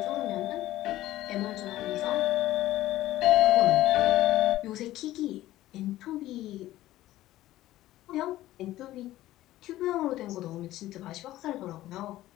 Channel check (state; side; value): quieter; right; 15.2 dB